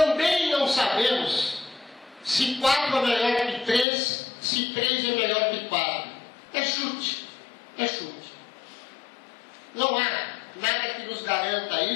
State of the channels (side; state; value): right; drops out; at 3.9 s